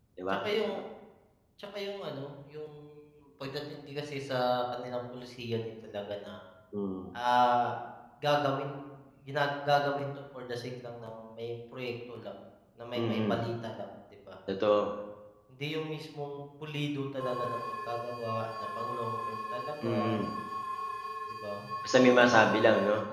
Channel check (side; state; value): both; identical; correlation 1.00